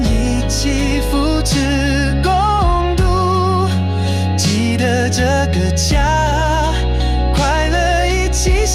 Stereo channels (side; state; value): both; identical; correlation 1.00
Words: 一起扶持共度，记得这个家快乐一起